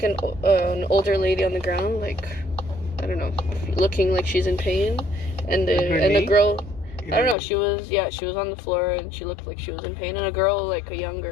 an older lady on the ground, like, I don't know, looking like she's in pain, and a girl, I don't know, she was on the floor and she looked like she was in pain, and a girl, like a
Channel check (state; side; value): drops out; right; at 7.4 s